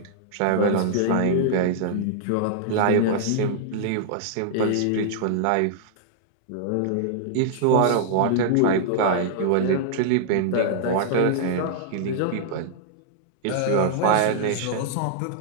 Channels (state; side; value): different; both; correlation -0.01